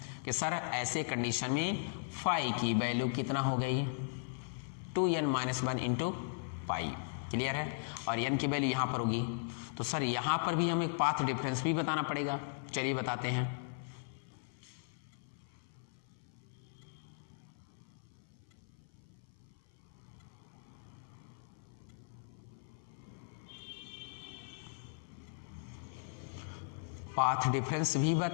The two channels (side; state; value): right; silent; 52 dB below the other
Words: कि सर ऐसे कंडीशन में फाई की वैल्यू कितना हो गई, 2n-1 इंटू पाई, क्लियर है, और n की वैल्यू यहाँ पर होगी। तो सर यहाँ पर भी हमें पाथ डिफरेंस भी बताना पड़ेगा, चलिए बताते हैं। पाथ डिफरेंस भी